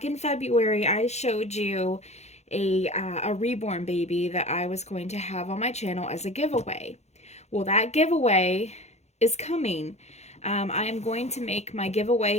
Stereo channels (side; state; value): right; late; 0.32 ms